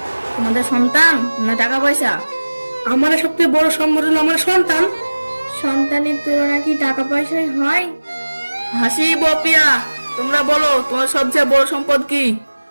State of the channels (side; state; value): both; inverted; correlation -1.00